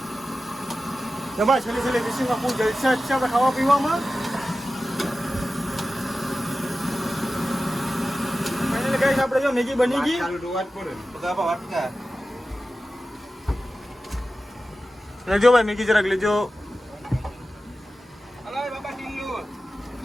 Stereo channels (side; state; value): both; normal; correlation 0.94